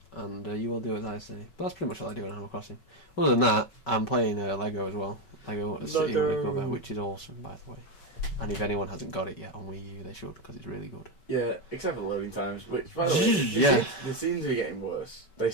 And you will do as I say. But that's pretty much all I do in Animal Crossing. Other than that, I'm playing Lego as well. Lego City Undercover, which is awesome, by the way. And if anyone hasn't got it yet on Wii U, they should, because it's really good. Yeah, except for the loading times, which, by the way, they seem to be getting worse. They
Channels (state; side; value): late; right; 5.2 ms